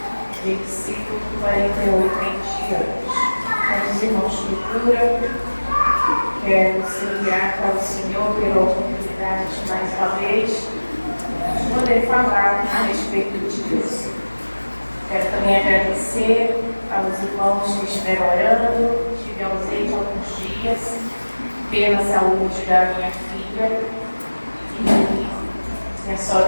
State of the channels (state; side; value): inverted; both; correlation -1.00